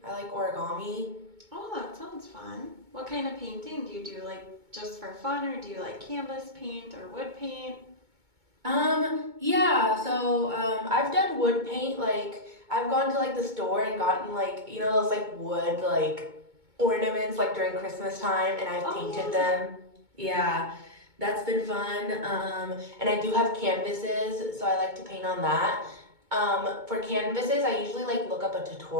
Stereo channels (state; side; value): late; left; 2.2 ms